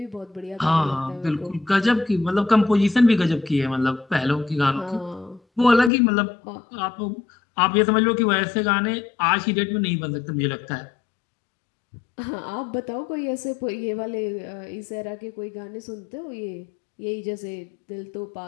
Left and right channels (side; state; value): right; drops out; at 5.9 s